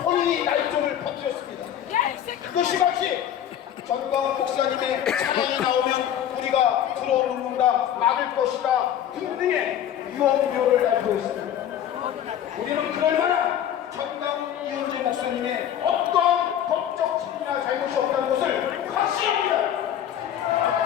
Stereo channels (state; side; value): quieter; right; 10.3 dB